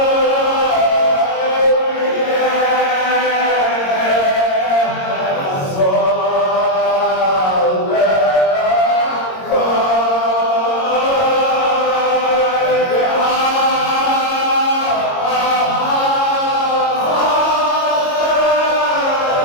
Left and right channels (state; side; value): late; right; 22 ms